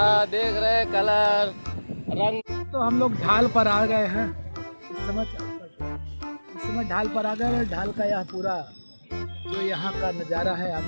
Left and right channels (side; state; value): both; inverted; correlation -1.00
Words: देख रहे कलर रंग। तो हम लोग ढाल पर आ गए हैं। इस समय ढाल पर आ गए। ढाल का यह पूरा जो यहाँ का नज़ारा है आप